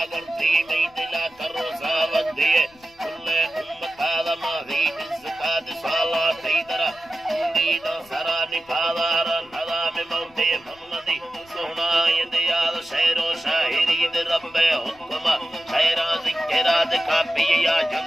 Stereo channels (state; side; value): noise; left; rumble, 30 dB below the sound